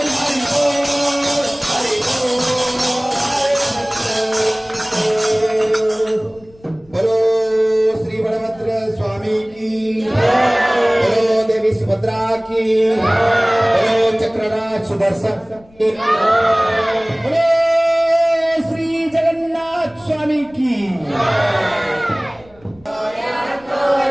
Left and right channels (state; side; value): noise; left; rumble, 27 dB below the sound